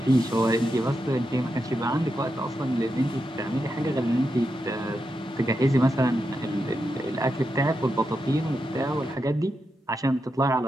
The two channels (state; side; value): normal; both; correlation 0.86